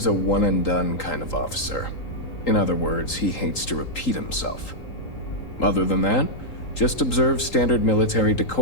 a one-and-done kind of officer. In other words, he hates to repeat himself. Other than that, just observe standard military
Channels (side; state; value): right; late; 3.8 ms